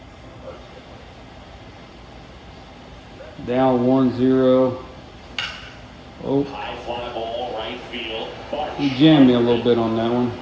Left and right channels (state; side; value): identical; both; correlation 1.00